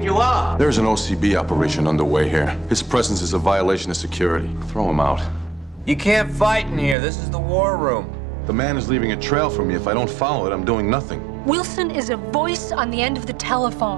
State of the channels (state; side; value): drops out; left; at 7.0 s